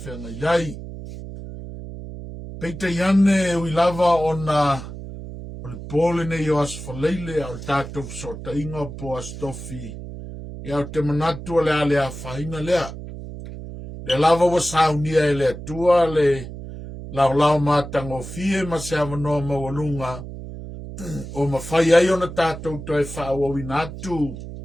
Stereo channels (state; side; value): noise; right; hum, 11 dB below the sound